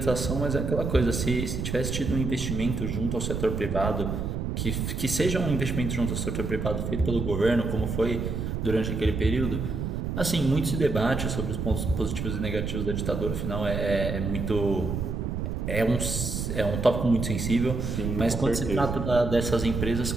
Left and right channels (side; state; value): right; noise; rumble, 2 dB below the sound